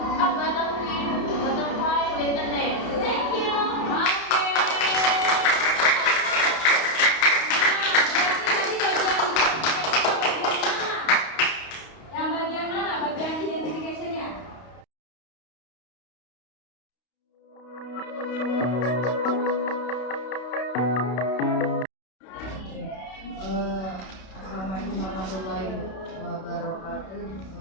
butterfly with a net. Thank you. yang bagian mana? Bagian identification-nya? Assalamualaikum warahmatullahi wabarakatuh.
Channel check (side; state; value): right; late; 32 ms